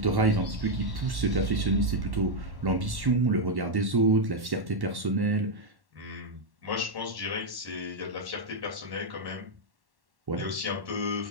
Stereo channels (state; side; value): late; left; 1.1 ms